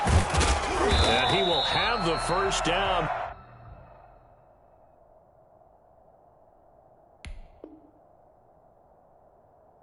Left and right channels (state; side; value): identical; both; correlation 1.00